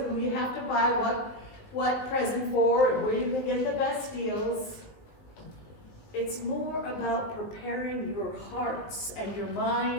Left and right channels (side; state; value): right; late; 19 ms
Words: who you have to buy what present for and where you can get the best deals. It's more about preparing your hearts and your